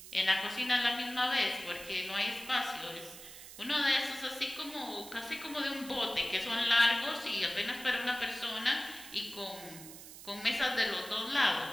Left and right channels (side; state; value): right; noise; hiss, 15 dB below the sound